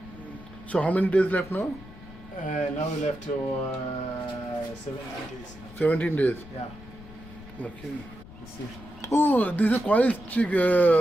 so how many days left now? Now we left to 17 days. 17 days. Yeah. Okay. You see. Oh, these are Quail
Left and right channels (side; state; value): left; noise; rumble, 18 dB below the sound